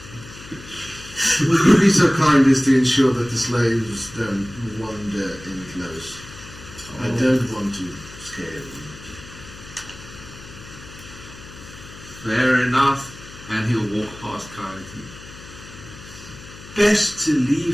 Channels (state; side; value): noise; left; hum, 17 dB below the sound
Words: Would you be so kind as to ensure that the slaves don't wander in close? I don't want to scare them. Fair enough. And he'll walk past Coyote. Best to